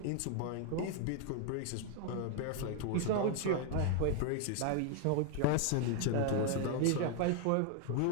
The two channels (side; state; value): both; different; correlation 0.00